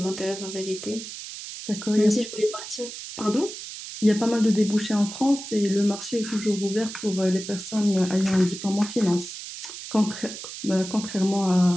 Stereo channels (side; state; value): right; noise; hiss, 10 dB below the sound